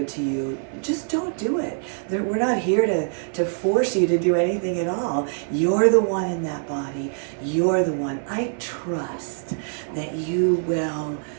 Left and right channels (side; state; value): left; silent; digital silence